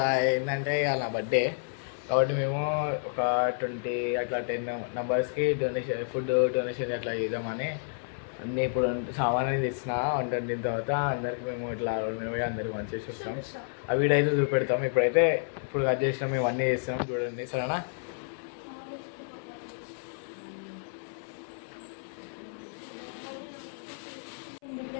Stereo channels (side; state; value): right; silent; 57 dB below the other